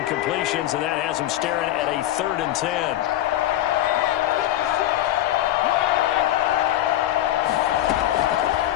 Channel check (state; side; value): quieter; right; 13.6 dB